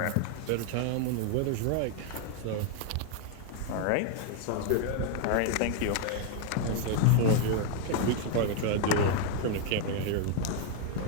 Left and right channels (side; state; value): both; different; correlation 0.01